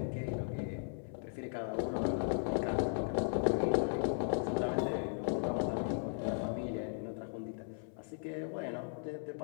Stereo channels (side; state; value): right; silent; 53 dB below the other